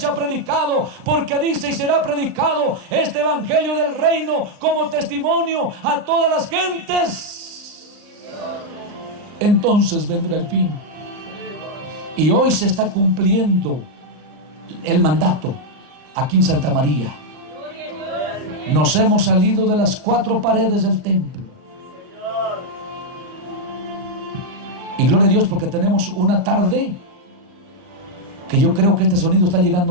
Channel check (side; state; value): left; late; 39 ms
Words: ha predicado, porque dice: y será predicado este evangelio del reino como testimonio a todas las gentes. Entonces vendrá el fin. Y hoy se está cumpliendo el mandato aquí en Santa María. Nos hemos salido de las 4 paredes del templo. Y gloria a Dios, porque tenemos una tarde que yo creo que este sonido está